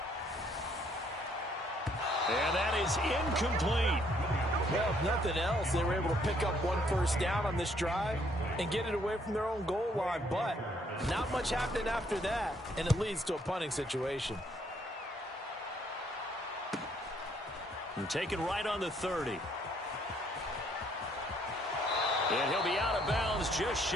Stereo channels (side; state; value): both; normal; correlation 0.67